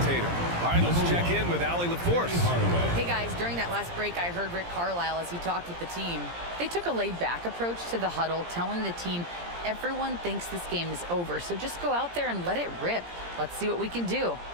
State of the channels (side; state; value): left; late; 17 ms